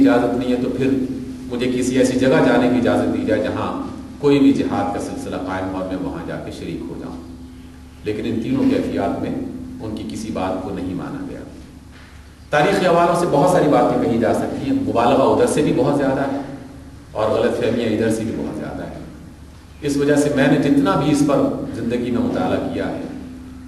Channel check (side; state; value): both; identical; correlation 1.00